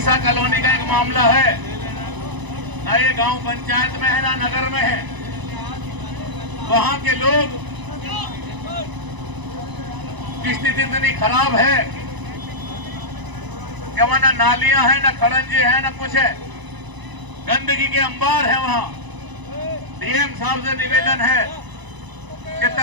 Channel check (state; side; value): late; left; 1.0 ms